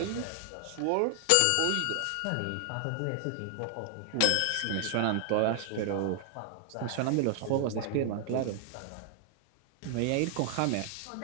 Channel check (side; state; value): both; different; correlation 0.00